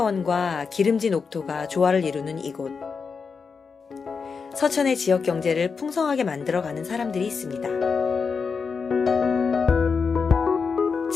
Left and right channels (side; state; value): right; quieter; 5.3 dB